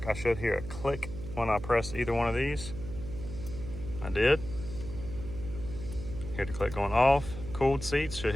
I should hear a click when I press either one of these. I did. Hear the click going off. Cooled seats, should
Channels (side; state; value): right; noise; hum, 9 dB below the sound